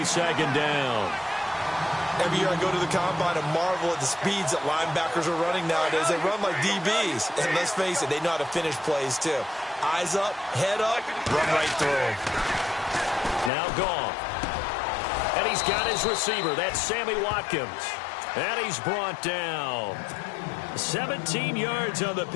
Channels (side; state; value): right; drops out; at 13.5 s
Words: second down. Every year I go to the combine and marvel at the speeds that linebackers are running nowadays. They run like DBs. And let's face it, they know how to finish plays too. Eyes up, head up, run right through. Now Goff. And he's got his receiver. That's Sammy Watkins. And he's brought down. 17 yards on the